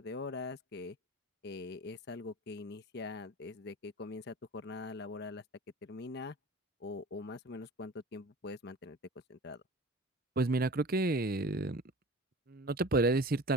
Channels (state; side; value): normal; both; correlation 0.39